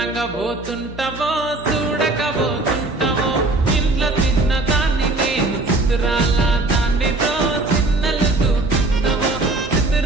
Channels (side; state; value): left; quieter; 3.0 dB